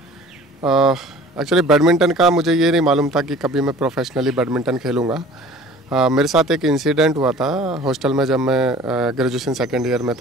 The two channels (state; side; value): normal; both; correlation 0.46